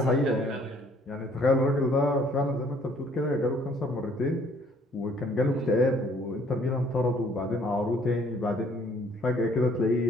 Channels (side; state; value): both; normal; correlation 0.61